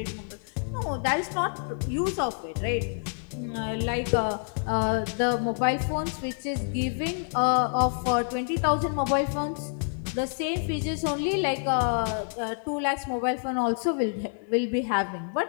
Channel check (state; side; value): silent; right; 60 dB below the other